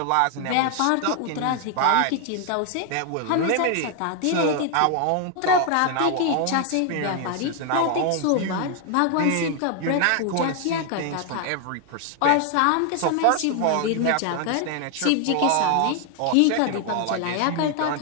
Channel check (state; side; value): different; both; correlation 0.00